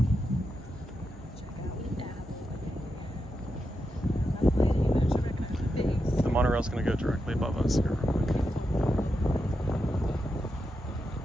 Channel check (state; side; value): normal; both; correlation 0.86